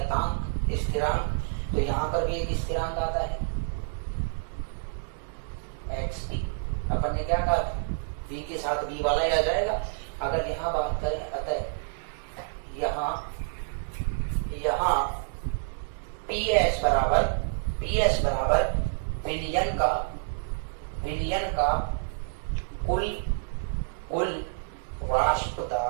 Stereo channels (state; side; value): silent; left; 59 dB below the other